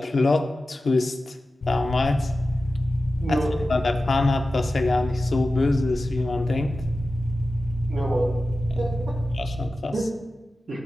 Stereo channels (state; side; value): normal; both; correlation 0.94